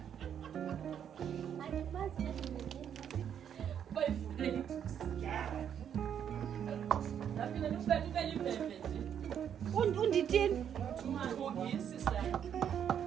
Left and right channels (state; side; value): quieter; left; 8.8 dB